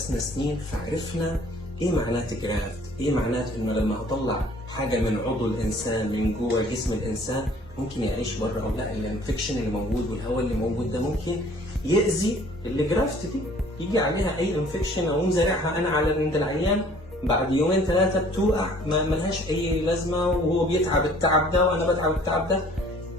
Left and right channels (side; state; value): both; normal; correlation 0.54